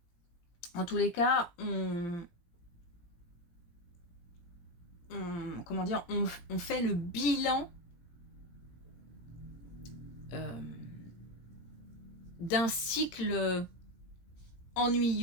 En tous les cas, comment dire, on fait le bilan d'un cycle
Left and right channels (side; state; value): right; late; 18 ms